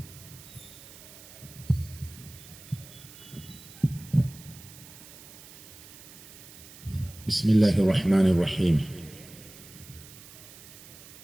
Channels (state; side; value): noise; right; hiss, 18 dB below the sound